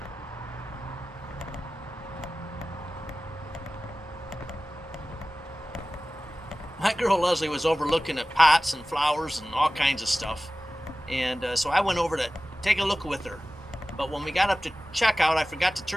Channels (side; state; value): both; normal; correlation 0.97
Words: My girl Leslie was overlooking at pots and flowers and all kinds of stuff. And so I went over to take a look with her. But when we got up to checkout, I forgot to